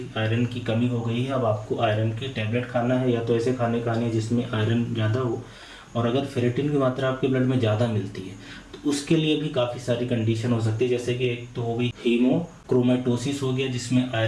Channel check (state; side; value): identical; both; correlation 1.00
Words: आयरन की कमी हो गई है। अब आपको आयरन की टैबलेट खाना है, या तो ऐसे खाने खाने जिसमें आयरन ज़्यादा हो। और अगर फेरेटिन की मात्रा आपके ब्लड में ज़्यादा मिलती है तो उसके लिए भी काफ़ी सारी कंडीशन हो सकती है, जैसे कि एक तो हो गई हीमोक्रोमेटोसिस हो गया जिसमें